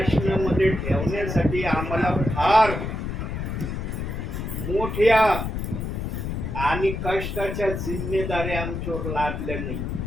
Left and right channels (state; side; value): noise; left; rumble, 4 dB below the sound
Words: ठेवण्यासाठी आम्हाला फार मोठ्या आणि कष्टाच्या जिम्मेदाऱ्या आमच्यावर लादल्या नाही.